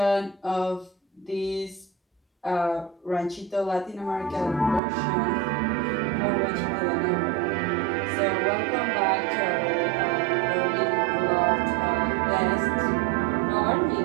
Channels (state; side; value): drops out; left; at 4.8 s